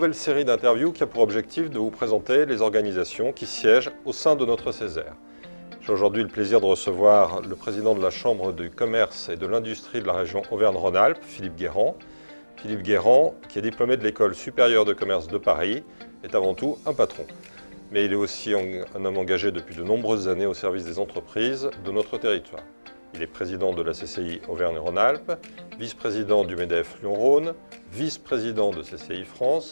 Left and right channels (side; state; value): both; inverted; correlation -1.00